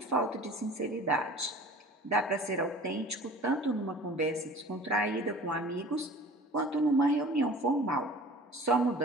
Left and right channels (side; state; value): both; normal; correlation 0.44